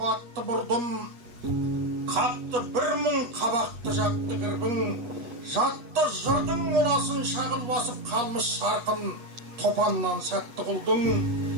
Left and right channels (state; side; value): late; left; 8.2 ms